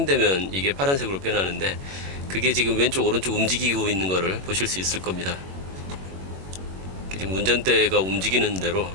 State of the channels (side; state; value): left; late; 21 ms